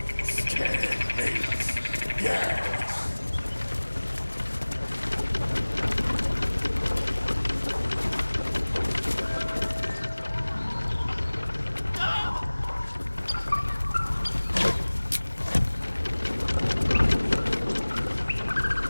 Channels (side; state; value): both; inverted; correlation -1.00